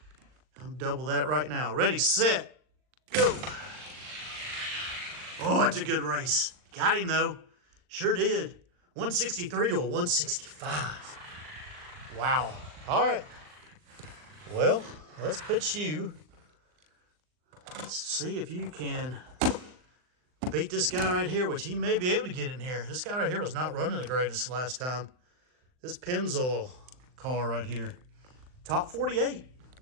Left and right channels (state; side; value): late; left; 39 ms